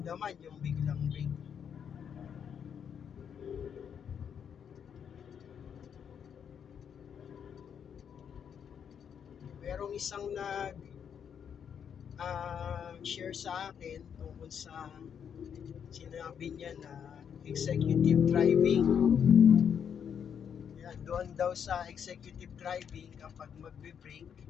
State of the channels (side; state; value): right; quieter; 7.9 dB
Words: yung biglang brake. Merong isang share sa akin tungkol sa sinabi niya na executive driving. Yan, doon daw sa executive driving, kapag magbe-brake,